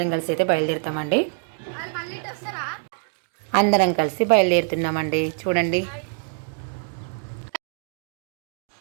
కలిసి అయితే బయలుదేరుతామండి. అందరం కలిసి బయలుదేరుతున్నామండి. చూడండి,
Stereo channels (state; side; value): silent; left; digital silence